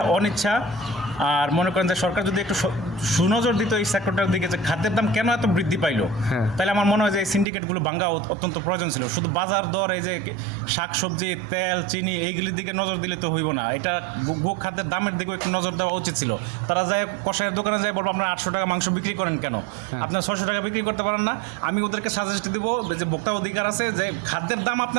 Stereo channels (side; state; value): left; drops out; at 7.5 s